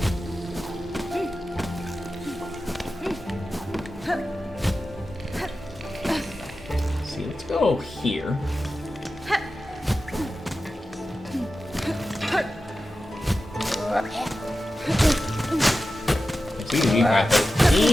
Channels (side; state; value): both; normal; correlation 0.93